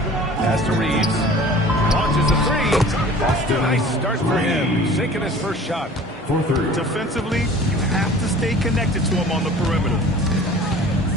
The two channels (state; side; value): normal; both; correlation 0.45